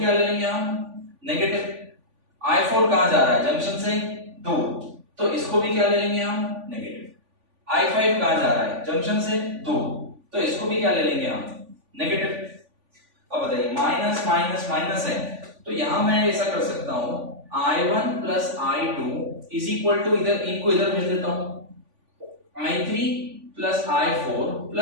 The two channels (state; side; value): late; left; 3.5 ms